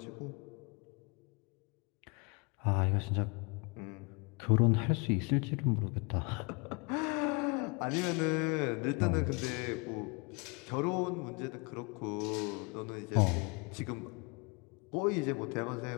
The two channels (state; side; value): quieter; right; 30.7 dB